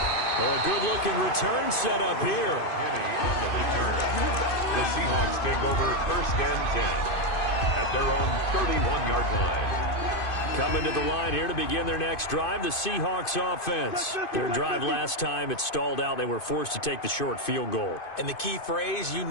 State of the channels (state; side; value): late; right; 2.5 ms